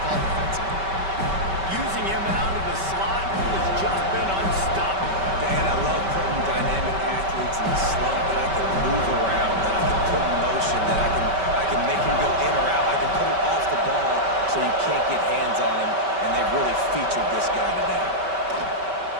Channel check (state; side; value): late; left; 5.2 ms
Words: call defensively. Using him out of the slot, he has just been unstoppable. Man, I love putting dynamic athletes in the slot that I can move around, that I can put in motion, that I can make him go in or out. I can put him off the ball so you can't get hands on him, and they've really featured this guy today.